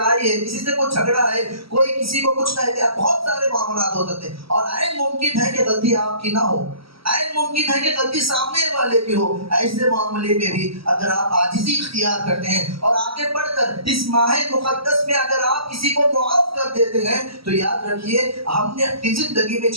ہے، کسی سے کچھ جھگڑا ہے، کوئی کسی کو کچھ کہتے ہیں، بہت سارے معاملات ہو سکتے ہیں، اور عین ممکن ہے کہ غلطی آپ کی نہ ہو، عین ممکن ہے کہ غلطی سامنے والے کی ہو۔ ایسے معاملے میں بھی اگر آپ عاجزی اختیار کرتے ہیں اور آگے بڑھ کر اس ماہ مقدس میں اگر آپ کسی کو معاف کر دیتے ہیں تو یاد رکھیے ہم نے اپنی زندگی میں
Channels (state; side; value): late; left; 0.75 ms